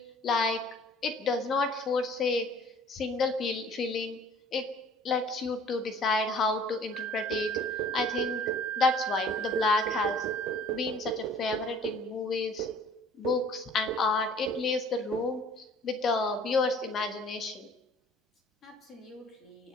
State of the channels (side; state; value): both; normal; correlation 0.51